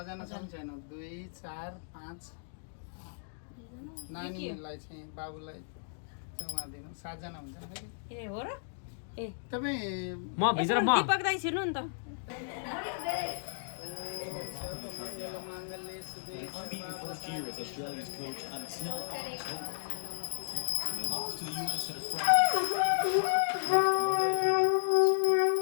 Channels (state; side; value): silent; right; digital silence